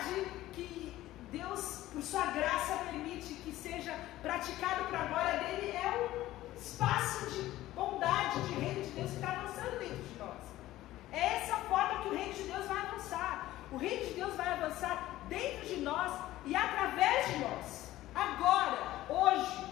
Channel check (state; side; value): quieter; right; 15.5 dB